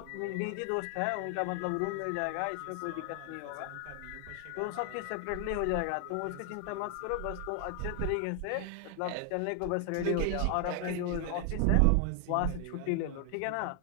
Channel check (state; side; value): different; both; correlation 0.00